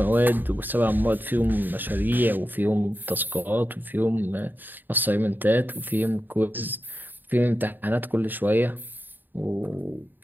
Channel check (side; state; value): left; late; 0.091 ms